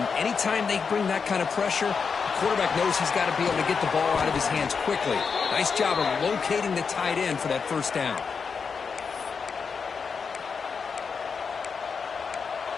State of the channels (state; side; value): quieter; right; 5.7 dB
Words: anytime they bring that kind of pressure, the quarterback knows he's got to be able to get the ball out of his hands quickly. Nice job of locating the tight end for that first down.